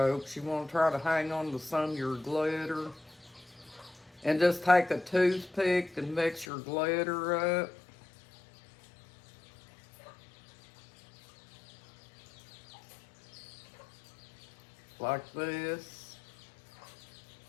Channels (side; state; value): right; drops out; at 6.5 s